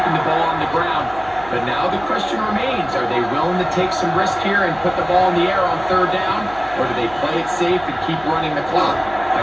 the ball on the ground. But now the question remains, are they willing to take some risk here and put the ball in the air on third down? Or do they play it safe and keep running the clock by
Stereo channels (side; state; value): right; noise; hum, 19 dB below the sound